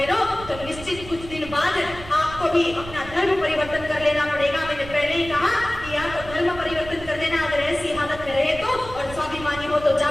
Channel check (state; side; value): noise; right; rumble, 14 dB below the sound